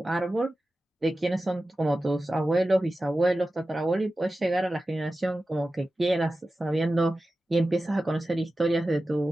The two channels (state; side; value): normal; both; correlation 0.94